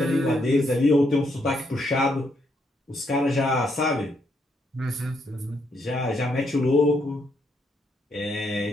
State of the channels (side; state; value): both; normal; correlation 0.76